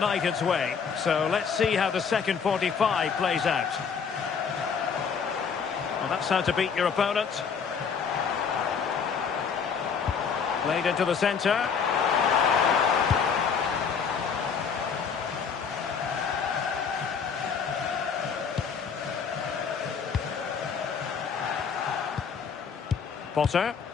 way. So let's see how the second 45 plays out. Well, that's how to beat your opponent. Played into the centre. Potter.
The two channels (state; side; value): quieter; right; 6.4 dB